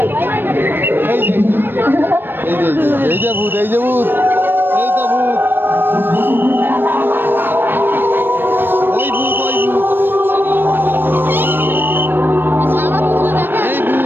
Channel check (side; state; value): left; late; 0.096 ms